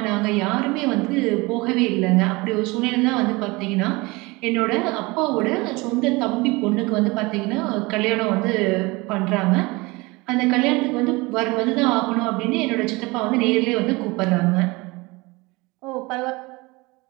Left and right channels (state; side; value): quieter; left; 24.0 dB